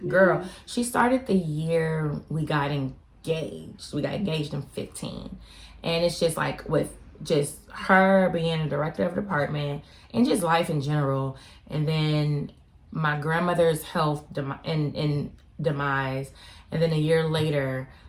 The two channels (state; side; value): identical; both; correlation 1.00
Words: Girl, she started the year we got engaged. We got engaged in 15. And it's just like with just her being a director of the department and just life in general. And then my grandmother's health demise. And then a year later,